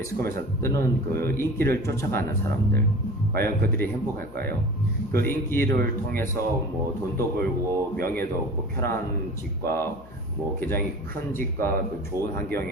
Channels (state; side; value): noise; left; hum, 20 dB below the sound